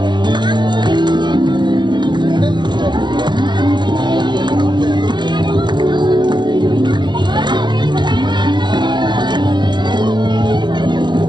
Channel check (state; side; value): late; left; 0.21 ms